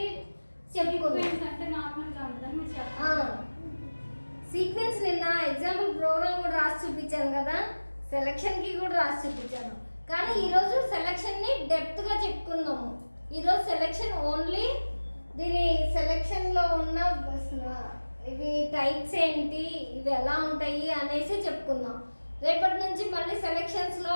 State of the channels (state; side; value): inverted; both; correlation -1.00